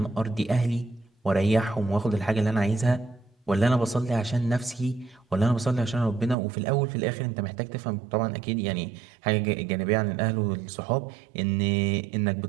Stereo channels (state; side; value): drops out; left; at 6.4 s